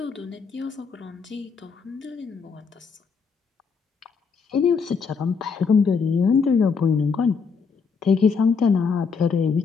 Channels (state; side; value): quieter; right; 5.5 dB